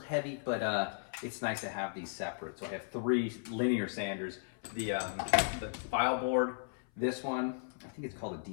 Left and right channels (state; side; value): silent; right; 54 dB below the other